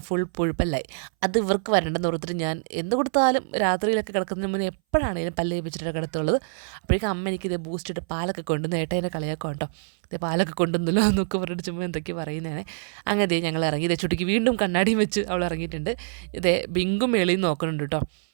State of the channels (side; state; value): left; silent; 60 dB below the other